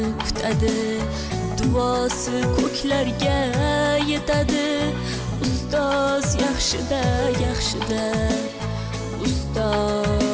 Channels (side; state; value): both; identical; correlation 1.00